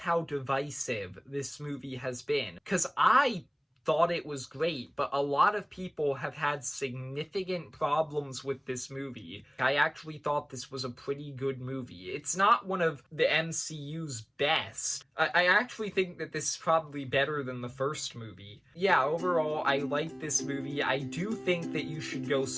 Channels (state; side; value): identical; both; correlation 1.00